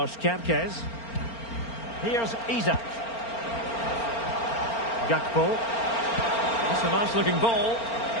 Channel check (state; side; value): late; right; 4.4 ms